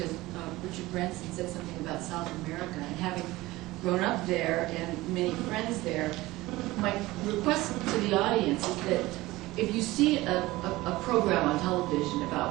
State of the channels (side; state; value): left; quieter; 19.0 dB